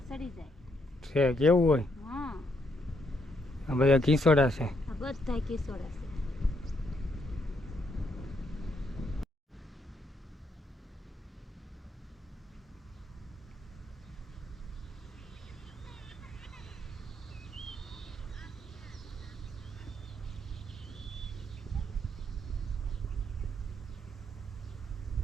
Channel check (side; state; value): both; normal; correlation 0.74